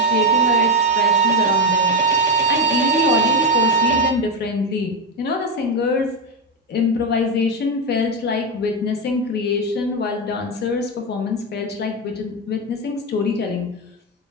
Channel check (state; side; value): normal; both; correlation 0.07